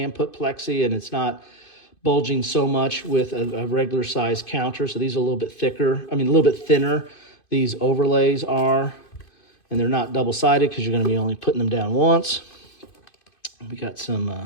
put plexi and it's not bulging so much with a regular size counter. So these are a little bit thicker, a little bit thinner. These overlays are, and they're not double-sided because you're going to be only putting them down once. We got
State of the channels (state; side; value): late; right; 2.5 ms